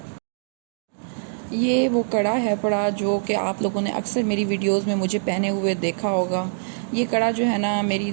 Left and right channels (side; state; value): left; silent; 63 dB below the other